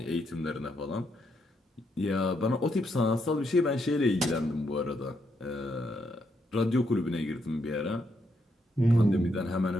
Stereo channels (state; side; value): normal; both; correlation 0.78